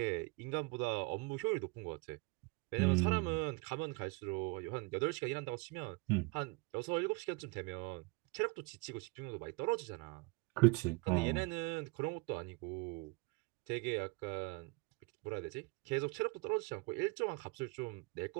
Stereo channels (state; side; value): quieter; left; 28.3 dB